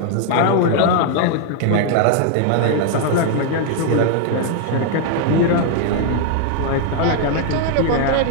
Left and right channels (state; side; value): different; both; correlation 0.00